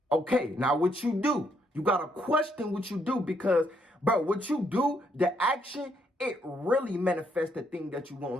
Okay, now what you do, you got to question what you do because, bro, what you do, the action, it really manifests the thing that you want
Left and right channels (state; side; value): normal; both; correlation 0.73